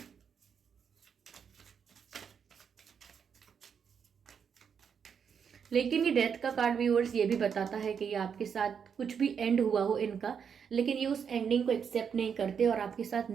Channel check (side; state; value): left; quieter; 7.0 dB